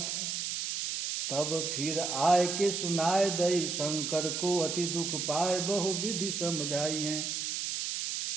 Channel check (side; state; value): right; noise; hiss, 2 dB below the sound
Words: है। तब फिर आए के सुनाए दई शंकर को, अति दुख पाए बहु विधि समझाई हैं।